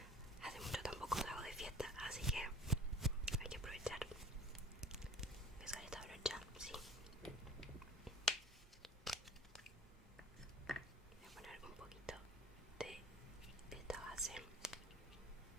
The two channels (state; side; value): normal; both; correlation 0.45